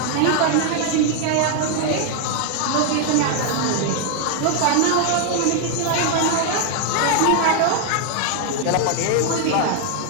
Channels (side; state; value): both; different; correlation 0.00